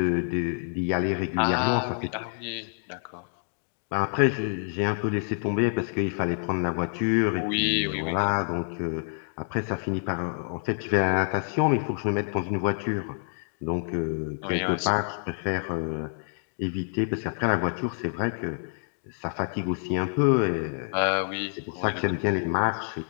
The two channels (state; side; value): silent; right; 60 dB below the other